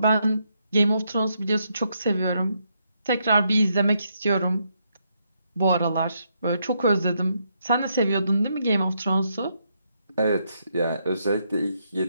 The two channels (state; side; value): inverted; both; correlation -0.78